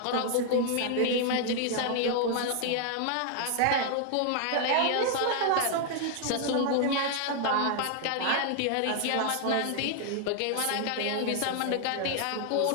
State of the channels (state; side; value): different; both; correlation 0.00